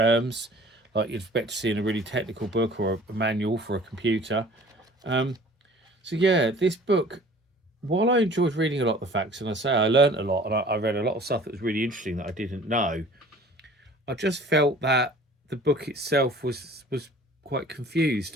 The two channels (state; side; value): normal; both; correlation 0.48